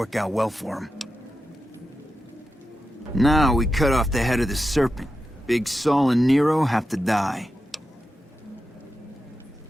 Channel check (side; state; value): both; normal; correlation 0.90